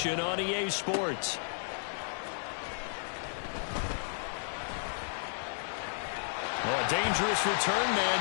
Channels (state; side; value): silent; right; digital silence